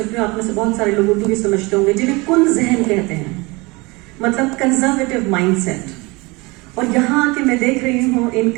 हूँ। आप में से बहुत सारे लोग उर्दू भी समझते होंगे, जिन्हें कुन जहन कहते हैं, मतलब कंजर्वेटिव माइंडसेट। और यहाँ आके मैं देख रही हूँ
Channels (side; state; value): left; quieter; 24.9 dB